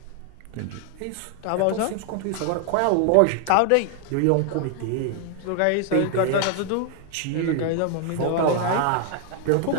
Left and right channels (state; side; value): different; both; correlation 0.00